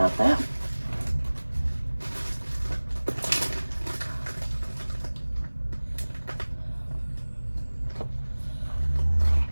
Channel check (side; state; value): both; inverted; correlation -1.00